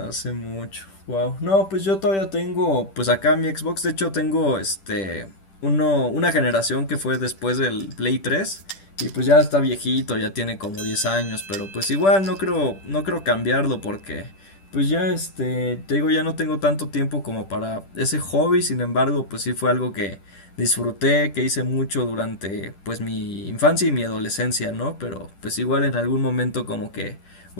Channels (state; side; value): late; right; 10 ms